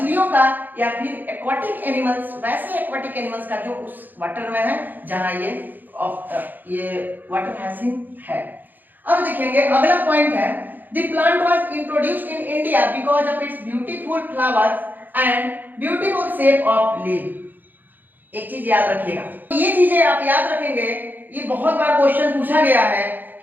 का या फिर एक्वाटिक एनिमल्स, वैसे एक्वाटिक एनिमल्स का जो उस वाटर में है जहां ये वाटर हैसिन है। अब देखेंगे अगला पॉइंट है, the plant was introduced in India because of its beautiful flowers and beautiful shape of leaf। एक चीज याद रखिएगा, ये चीजें आप याद रखेंगे, ये बहुत बार क्वेश्चन पूछा गया है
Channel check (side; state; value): left; late; 0.087 ms